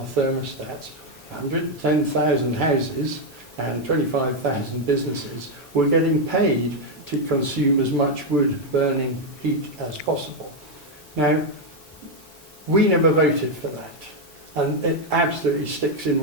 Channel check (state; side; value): normal; both; correlation 0.03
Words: thermostats, 110,000 houses and 25,000 businesses were getting paid to consume as much wood-burning heat as possible. Now, we never voted for that. And it absolutely sticks in